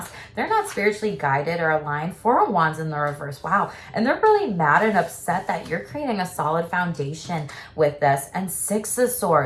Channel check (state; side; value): identical; both; correlation 1.00